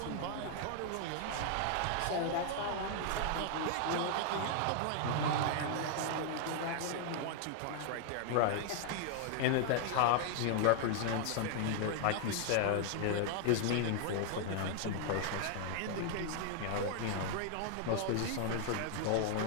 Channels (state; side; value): different; both; correlation 0.00